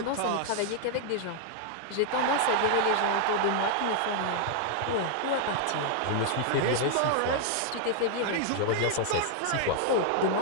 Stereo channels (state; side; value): different; both; correlation 0.00